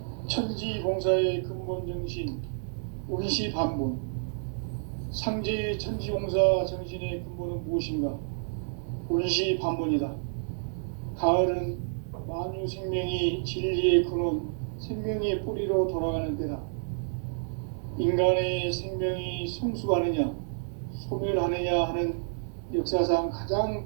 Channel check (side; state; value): left; silent; digital silence